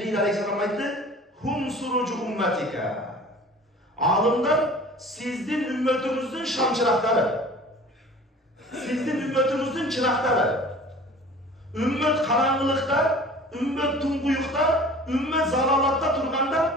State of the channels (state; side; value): normal; both; correlation 0.44